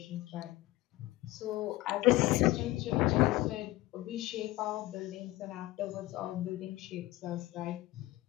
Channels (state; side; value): quieter; right; 18.0 dB